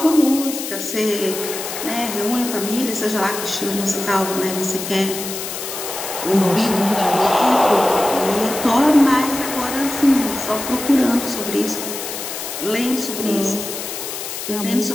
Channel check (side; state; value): left; noise; hiss, 7 dB below the sound